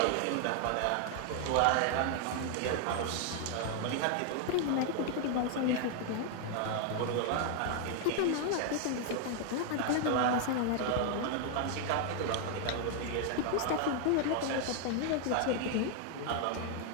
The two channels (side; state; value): both; different; correlation 0.00